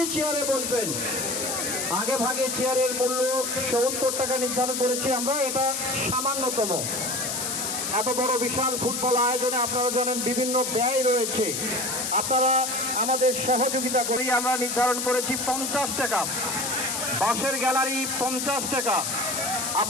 চেয়ারে বসবেন, আগে ভাগে চেয়ারের মূল্য ৭০ টাকা নির্ধারণ করেছি আমরা। এটা সামান্যতম। এত বড় বিশাল ফুটবল আয়োজনে আপনারা জানেন বিভিন্ন ব্যয় রয়েছে। আপনারা আমাদের সহযোগিতা করেই আমরা নির্ধারণ করেছি ৫০ টাকা। বাঁশের গ্যালারি ৫০ টাকা।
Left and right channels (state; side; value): noise; left; hiss, 2 dB below the sound